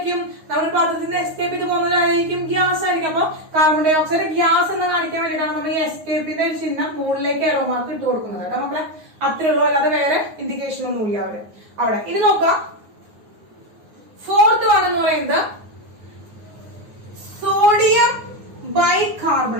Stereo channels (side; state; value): left; late; 9.5 ms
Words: നമ്മൾ പാത്രത്തിൽ നിന്ന് എസ്കേപ്പ് ചെയ്ത് പോകുന്നവരായിരിക്കും ഗ്യാസ് ആയിരിക്കും. അപ്പൊ കാർബൺ ഡൈ ഓക്സൈഡ് ഗ്യാസ് എന്ന് കാണിക്കാൻ വേണ്ടിയിട്ടാണ് നമ്മൾ ഈ എസ്കേപ്പിന്റെ ഒരു ചിഹ്നം മുകളിലേക്ക് എറോ മാർക്ക് ഇട്ട് കൊടുക്കുന്നത് കേട്ടോ മക്കളെ. അത്രേ ഉള്ളൂ. അല്ലാതെ വേറെ ഇൻഡിക്കേഷൻ ഒന്നും ഇല്ല അവിടെ. ഇനി നോക്കാം. ഫോർത്ത് വൺ എന്ന് പറയുന്നത് സോഡിയം